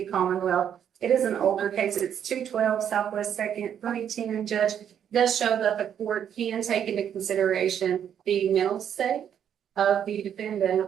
Commonwealth. It is an older case. It's 212 Southwest 2nd, 2010, Judge. It does show that the court can take into consideration the mental state of the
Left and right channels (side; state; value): left; quieter; 9.0 dB